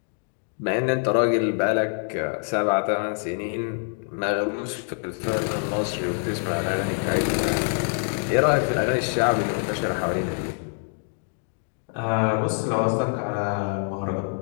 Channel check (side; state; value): right; silent; 56 dB below the other